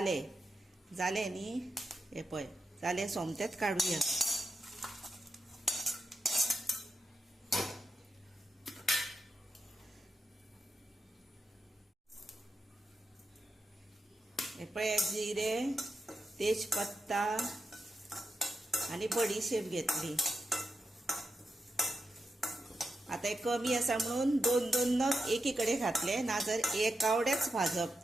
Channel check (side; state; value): both; normal; correlation 0.87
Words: न्ही हे पळय जाले सोमतेच काडुया. हे पळय जिरे तेजपत्ता आणि बडीशेप घेतली. आता हे कमी आसा म्हणून 2 नग एकीकडे घातले, ना जर एकावडेच